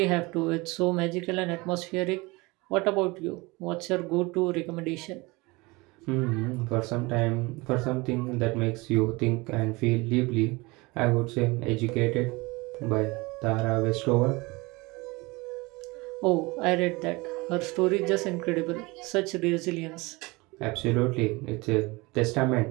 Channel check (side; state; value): left; quieter; 24.1 dB